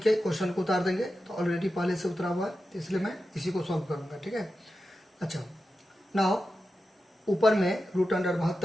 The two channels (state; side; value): normal; both; correlation 0.91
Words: के क्वेश्चन को उतार देंगे, तो ऑलरेडी पहले से उतरा हुआ है, तो इसलिए मैं इसी को सॉल्व करूंगा। ठीक है, अच्छा नाउ ऊपर में रूट अंडर